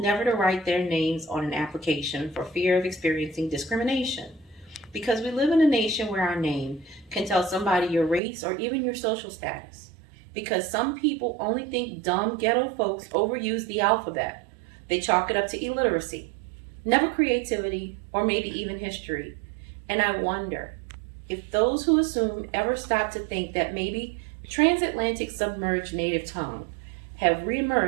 never to write their names on an application for fear of experiencing discrimination. Because we live in a nation where our name can tell somebody your race or even your social status. Because some people only think dumb ghetto folks overuse the alphabet. They chalk it up to illiteracy, never creativity, or maybe even history. And I wonder if those who assume ever stop to think that maybe transatlantic submerged native tongue have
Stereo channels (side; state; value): left; drops out; at 8.2 s